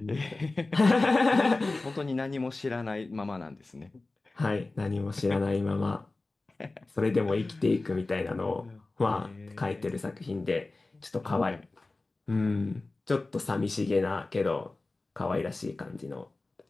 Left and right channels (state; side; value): quieter; right; 3.3 dB